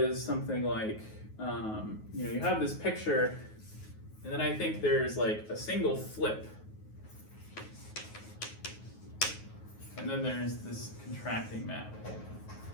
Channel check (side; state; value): right; late; 9.4 ms